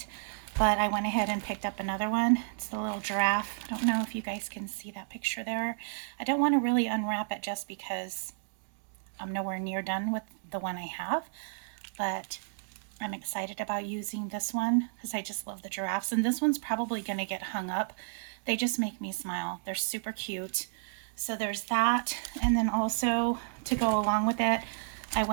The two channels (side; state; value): left; silent; digital silence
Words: but I went ahead and picked up another one. It's the little giraffe. I don't know if you guys can see that picture there. I don't want to really unwrap it just because I'm nowhere near done with the one I have, but I'm excited about using this one because I just love the giraffes, and this one's probably going to get hung up. They just make me smile. They're super cute. So there's that, and then also to go along with it, I